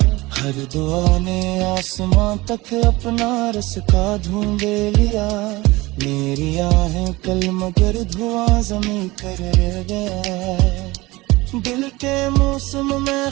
हर दुआ ने आसमां तक अपना रस का ढूंढे लिया, मेरी आहें कल मगर धुआं जमी कर रह गया। दिल के मौसम में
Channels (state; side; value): quieter; left; 21.0 dB